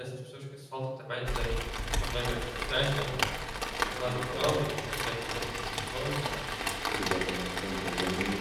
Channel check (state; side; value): identical; both; correlation 1.00